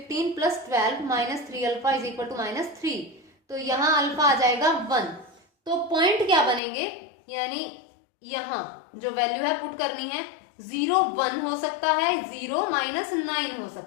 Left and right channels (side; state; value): right; drops out; at 6.6 s